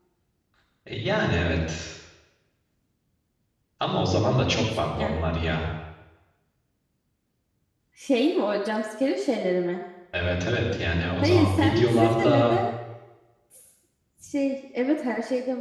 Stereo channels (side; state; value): both; identical; correlation 1.00